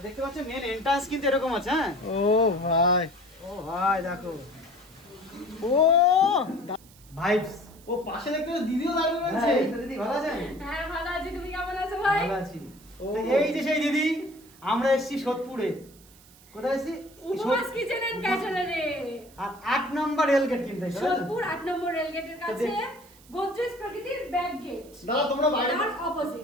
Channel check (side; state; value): right; noise; hiss, 25 dB below the sound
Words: দেখতে পাচ্ছ মেন এন্ট্রান্স কিন্তু এরকম আছে, হ্যাঁ? ও ভাই, ও ভাই দেখো, ও ভাইবস। ও পাশে দেখতে পাচ্ছ দিদিও দাঁড়িয়ে রয়েছে। হ্যাঁ, এই তো দিদি ভালো আছেন? হ্যাঁ ভালো আছি, তুমি কেমন আছো ভাই? ভালো আছি। ও। তো এই যে সেই দিদি, আমরা এসেছি সোদপুরে। কোথায় এসেছি? উপবাস কিচেন এন্ড ক্যাটারারে, আর 8 নম্বর রেলগেট কিন্তু এই, সোদপুর 8 নম্বর রেলগেটের কাছে, গোদরেজ প্রকৃতির ব্যাক গেট, দাদা তোমরা বাইরে, তার